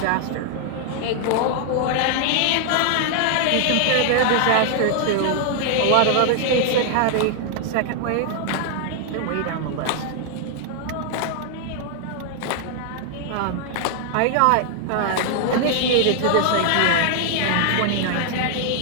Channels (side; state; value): both; different; correlation 0.00